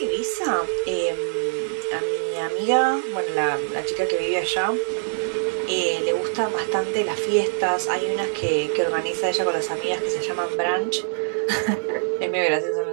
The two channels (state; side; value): silent; left; digital silence